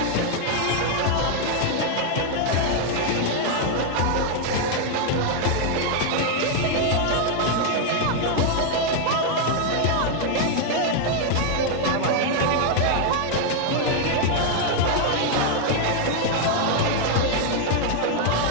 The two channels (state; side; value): different; both; correlation 0.00